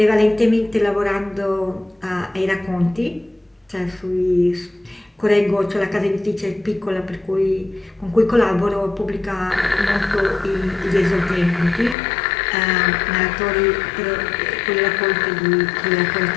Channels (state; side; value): drops out; right; at 12.0 s